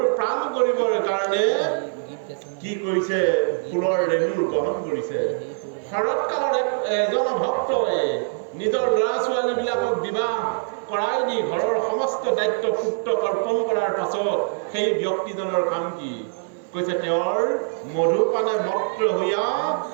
প্ৰাণ কৰিবৰ কাৰণে কি কৰিছে ফুলৰ ৰেণুৰ গ্ৰহণ কৰিছে শৰৎকালত এজন ভক্তই নিজৰ ল'ৰা ছোৱালীবিলাকক বিবাহ কৰাই দি ঘৰৰ সমস্ত দায়িত্ব পুত্ৰক অৰ্পণ কৰাৰ পাছত সেই ব্যক্তিজনৰ কাম কি কৈছে তেওঁৰ মধুপানে মত্ত হৈয়া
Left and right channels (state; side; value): silent; left; 57 dB below the other